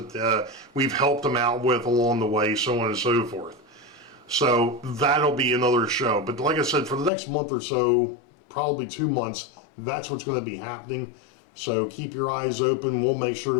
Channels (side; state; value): right; drops out; at 7.1 s